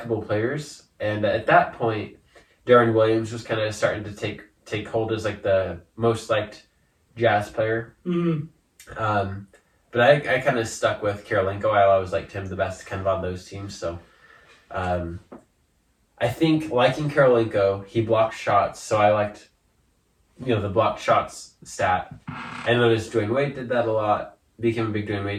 players, and at that point, Darren Williams was kind of starting to take hold as like the most liked Jazz player. Mm-hmm. But I kind of stuck with Karolinko. I always liked him the best, kind of on those teams. So, I think liking Karolinko, he blocked shots, so I liked. The blocked shots stat. I noticed Dwayne Wade did that a lot. Became a big Dwayne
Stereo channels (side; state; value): both; identical; correlation 1.00